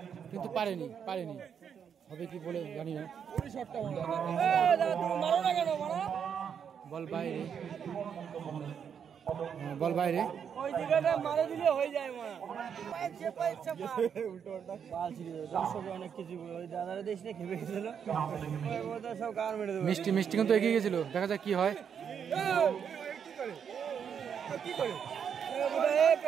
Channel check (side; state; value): left; quieter; 7.6 dB